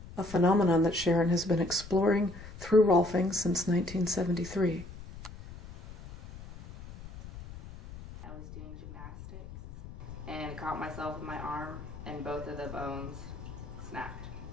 a phenomenon that Sharon has been exploring through Rolfing since 1973. I was doing gymnastics and caught myself with my arm, and both of the bones snapped.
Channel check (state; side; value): noise; left; rumble, 14 dB below the sound